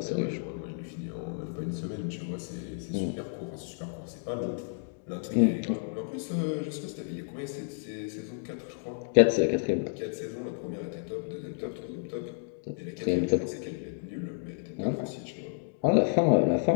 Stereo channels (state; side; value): silent; right; digital silence